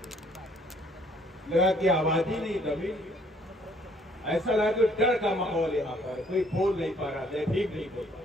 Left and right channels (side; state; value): both; normal; correlation 0.62